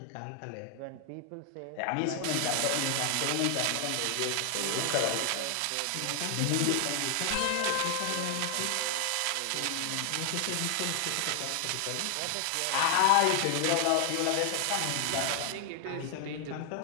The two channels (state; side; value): different; both; correlation 0.00